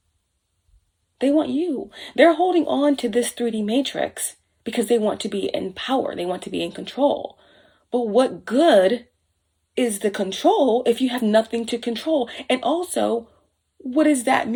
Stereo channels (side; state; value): both; identical; correlation 1.00